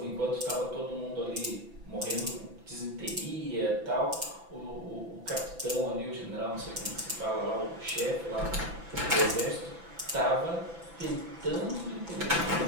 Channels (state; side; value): late; left; 6.0 ms